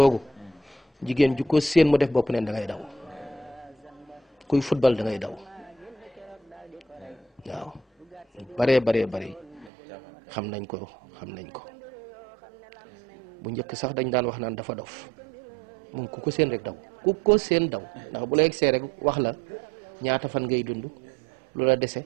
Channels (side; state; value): left; drops out; at 9.7 s